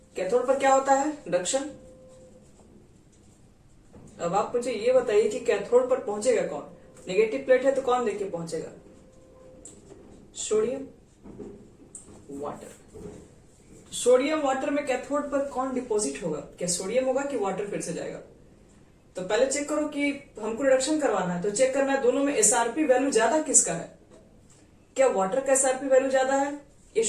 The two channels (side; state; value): both; identical; correlation 1.00